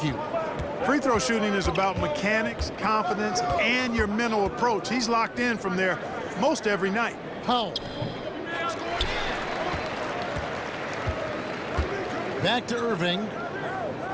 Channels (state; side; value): identical; both; correlation 1.00